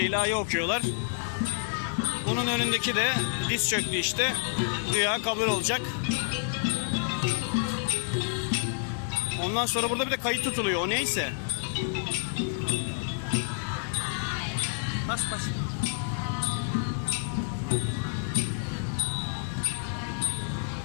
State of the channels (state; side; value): silent; right; 59 dB below the other